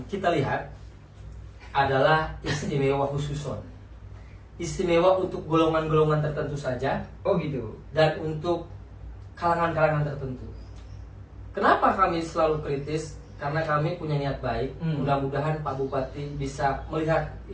kita lihat adalah istimewa khususon. Istimewa untuk golongan-golongan tertentu saja Oh gitu. dan untuk kalangan-kalangan tertentu. Kenapa kami selalu kritis? Karena kami punya niat baik. Mudah-mudahan Pak Bupati bisa melihat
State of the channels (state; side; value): identical; both; correlation 1.00